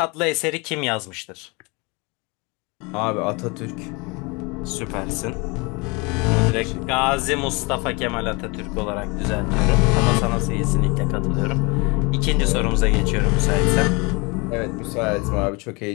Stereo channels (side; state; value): right; quieter; 27.9 dB